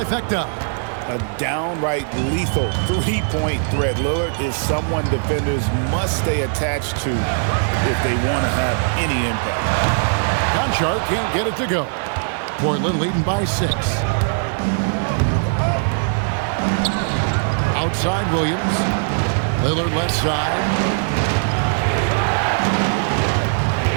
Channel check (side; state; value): left; silent; 66 dB below the other